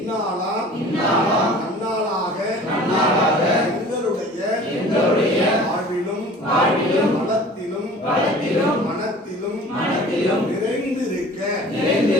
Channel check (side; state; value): both; normal; correlation 0.45